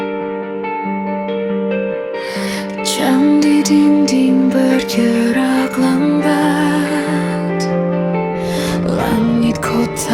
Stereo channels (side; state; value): both; identical; correlation 1.00